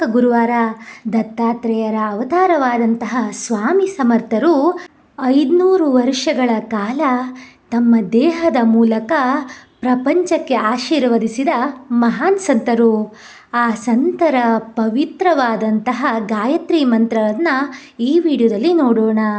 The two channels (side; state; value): both; identical; correlation 1.00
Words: ಗುರುವಾರ. ದತ್ತಾತ್ರೇಯರ ಅವತಾರವಾದಂತಹ ಸ್ವಾಮಿ ಸಮರ್ಥರು 500 ವರ್ಷಗಳ ಕಾಲ ತಮ್ಮ ದೇಹದ ಮೂಲಕ ಪ್ರಪಂಚಕ್ಕೆ ಆಶೀರ್ವದಿಸಿದ ಮಹಾನ್ ಸಂತರು. ಆ ಸಂತರ ಪವಿತ್ರವಾದಂತಹ ಗಾಯತ್ರಿ ಮಂತ್ರವನ್ನು ಈ ವಿಡಿಯೋದಲ್ಲಿ ನೋಡೋಣ.